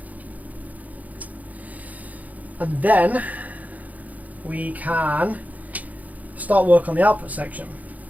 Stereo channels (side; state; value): left; late; 0.077 ms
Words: and then we can start work on the output section.